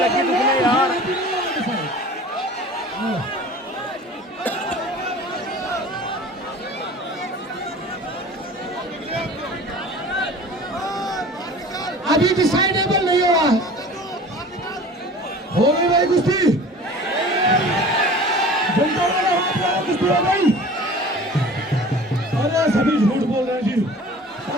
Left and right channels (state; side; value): normal; both; correlation 0.43